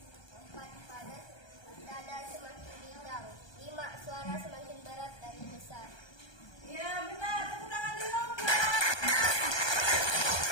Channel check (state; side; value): late; right; 1.2 ms